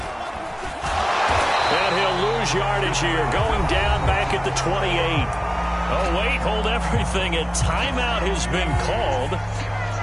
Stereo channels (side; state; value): both; identical; correlation 1.00